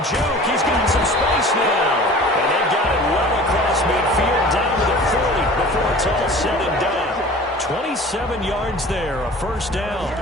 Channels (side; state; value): both; normal; correlation 0.42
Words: juke. He's got some space now. And they've got it well across midfield down to the 40 before it's all said and done. 27 yards there, a first down.